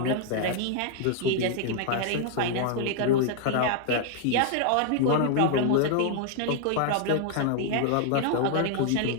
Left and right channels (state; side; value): different; both; correlation 0.00